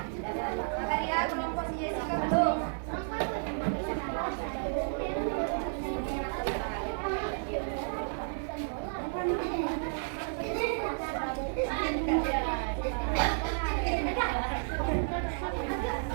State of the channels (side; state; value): left; silent; 56 dB below the other